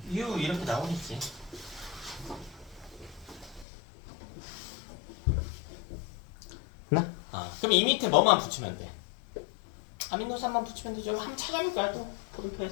U 이렇게 나오겠지. 나? 그럼 이 밑에 뭐만 붙이면 돼? 아미노산만 붙이면 되죠. 한번 찾아볼까요? 또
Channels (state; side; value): drops out; right; at 3.7 s